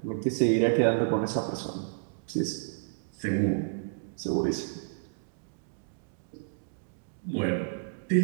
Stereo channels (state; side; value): silent; left; digital silence